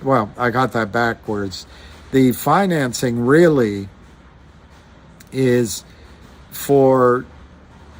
well, I got that backwards. The financing really is for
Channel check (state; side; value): identical; both; correlation 1.00